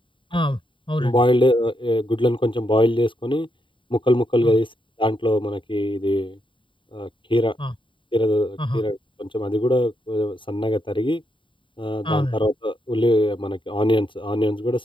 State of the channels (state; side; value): late; right; 0.24 ms